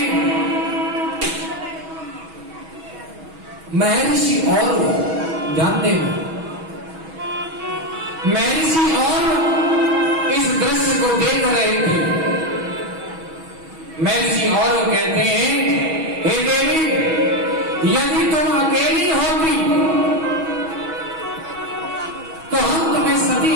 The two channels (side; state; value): left; late; 6.2 ms